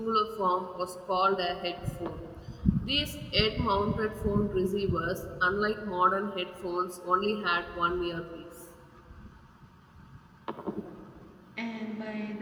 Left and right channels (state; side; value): identical; both; correlation 1.00